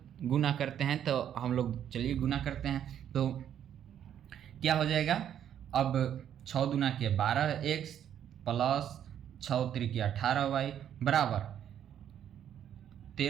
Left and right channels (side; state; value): left; quieter; 9.8 dB